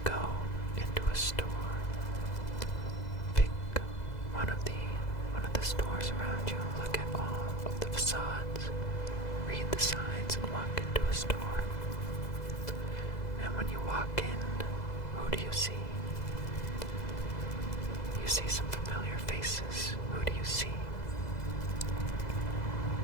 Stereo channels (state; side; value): late; right; 2.0 ms